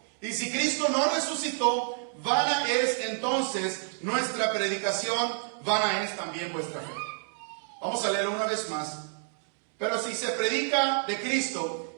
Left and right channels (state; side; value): silent; left; digital silence